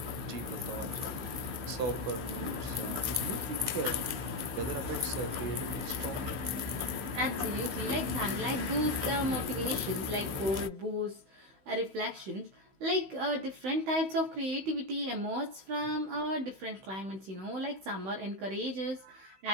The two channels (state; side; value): late; left; 16 ms